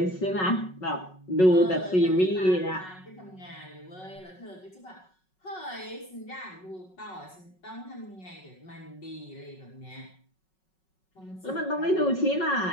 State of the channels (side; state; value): right; late; 5.4 ms